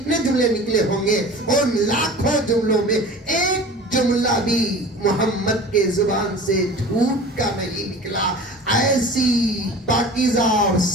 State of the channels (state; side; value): normal; both; correlation 0.39